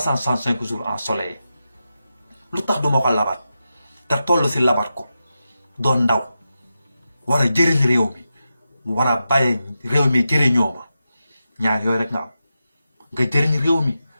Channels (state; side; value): inverted; both; correlation -0.89